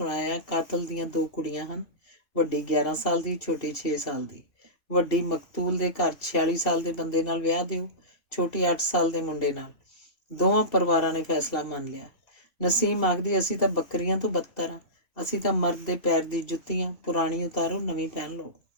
ਕਾਤਲ ਦੀਆਂ 2 ਕੁੜੀਆਂ ਹਨ, ਵੱਡੀ 11 ਸਾਲ ਦੀ, ਛੋਟੀ 6 ਸਾਲ ਦੀ। ਵੱਡੀ ਮਕਤੂਲ ਦੇ ਘਰ 46 ਸਾਲ ਦੇ ਬੰਦੇ ਨਾਲ ਵਿਆਹ ਦਿਓ, ਛੋਟੀ 8 ਸਾਲ ਦੇ ਮੁੰਡੇ ਨਾਲ। ਦੋਵਾਂ ਪਰਿਵਾਰਾਂ ਨੇ ਫੈਸਲਾ ਮੰਨ ਲਿਆ। ਨਸੀਮ ਆਖਦੀ, ਅਸੀਂ ਤਾਂ ਬੱਕਰੀਆਂ ਤੋਂ ਬੱਤਰ ਹਾਂ, ਅਸੀਂ ਤਾਂ ਮਰਦ ਦੇ ਪੈਰ ਦੀ ਜੁੱਤੀਆਂ, ਪੁਰਾਣੀ ਉਤਾਰੋ, ਨਵੀਂ ਪਹਿਨ ਲਓ।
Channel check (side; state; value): right; late; 2.7 ms